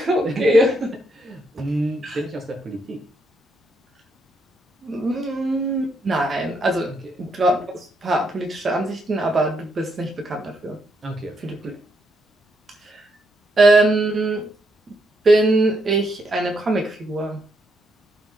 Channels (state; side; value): normal; both; correlation 0.77